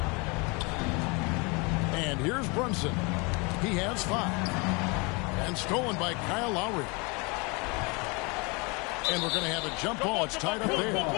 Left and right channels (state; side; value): quieter; right; 29.2 dB